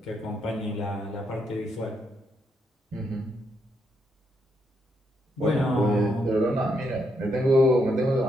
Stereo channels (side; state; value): both; normal; correlation 0.78